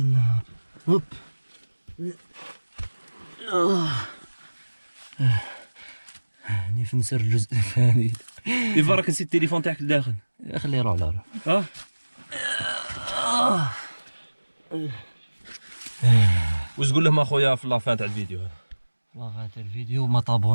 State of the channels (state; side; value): inverted; both; correlation -1.00